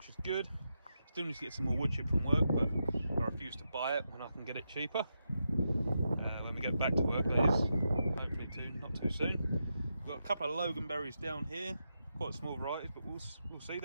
is good. Still need to get some more wood chip from work, but I refuse to buy it when I can get it cheaper. When we get back to work, that is, hopefully not too soon. We've got a couple of loganberries down here, quite small varieties, but we'll see,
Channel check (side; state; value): both; inverted; correlation -0.86